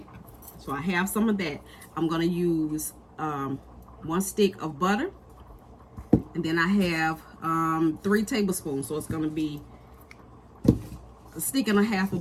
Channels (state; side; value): identical; both; correlation 1.00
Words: So I have some of that. I'm going to use 1 stick of butter. And then I have 3 tablespoons. So it's going to be a stick and a half